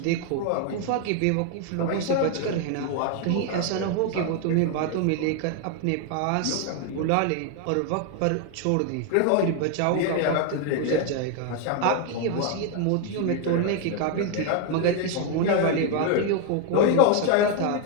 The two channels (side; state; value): both; different; correlation 0.01